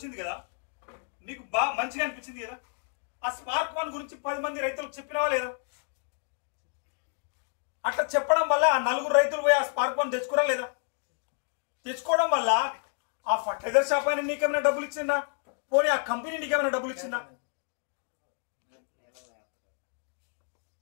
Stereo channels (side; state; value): right; silent; 56 dB below the other